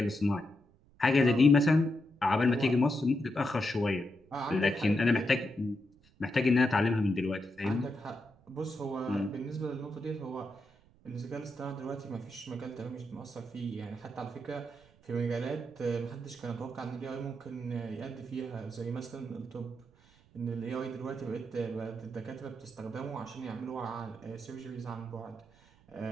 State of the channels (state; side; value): noise; right; rumble, 29 dB below the sound